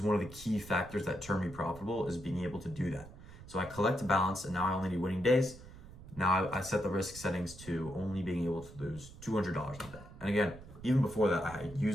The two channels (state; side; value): noise; right; rumble, 17 dB below the sound